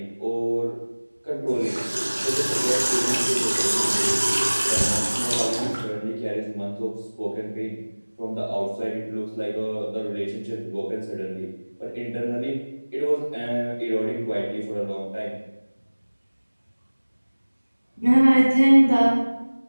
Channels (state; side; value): inverted; both; correlation -1.00